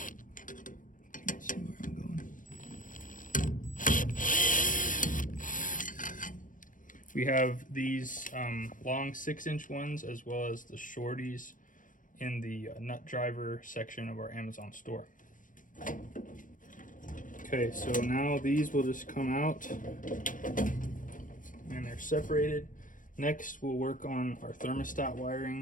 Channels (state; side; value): late; right; 0.38 ms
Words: Let's see where I'm going. We have these long 6-inch ones, as well as the shorties in the nut driver section of our Amazon store. Okay, so now these will just come out, and they're separated. Next, we'll work on our thermostat